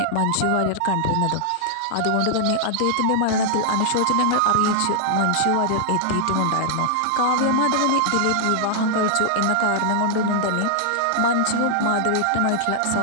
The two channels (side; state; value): both; different; correlation -0.01